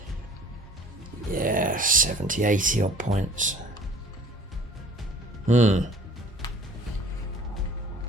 yeah, 70, 80 odd points.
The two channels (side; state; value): both; normal; correlation 0.49